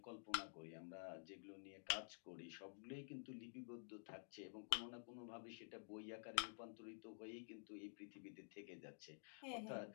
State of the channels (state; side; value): silent; right; digital silence